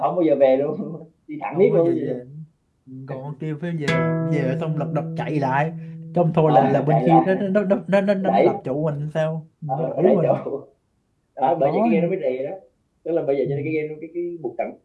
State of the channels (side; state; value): both; identical; correlation 1.00